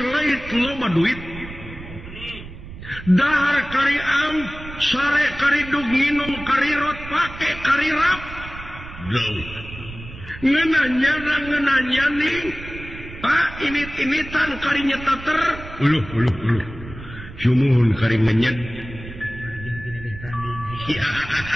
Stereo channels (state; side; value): noise; right; rumble, 13 dB below the sound